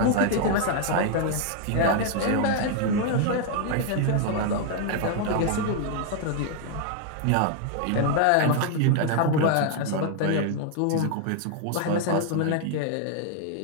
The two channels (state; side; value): different; both; correlation 0.00